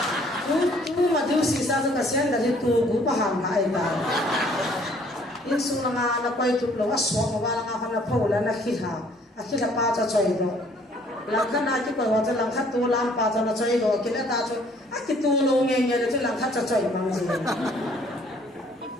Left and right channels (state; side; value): normal; both; correlation 0.60